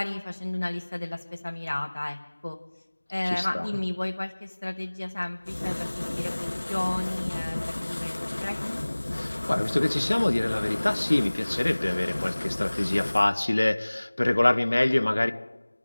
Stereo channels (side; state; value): both; inverted; correlation -1.00